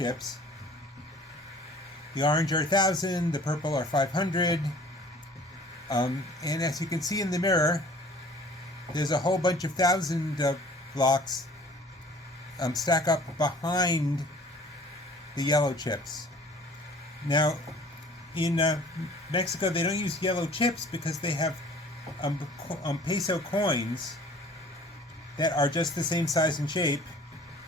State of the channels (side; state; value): both; normal; correlation 0.50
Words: The orange are 1,000, the purple are 500, and as you can see in the mirror, there's a whole bunch of 1,000 blocks stack up behind the yellow chips. Now, in Mexico, they don't use yellow chips because they have peso coins that are just the same size and shape.